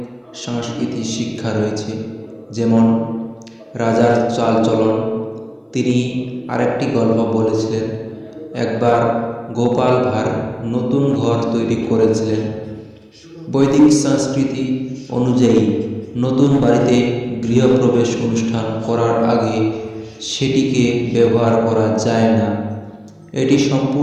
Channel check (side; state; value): both; identical; correlation 1.00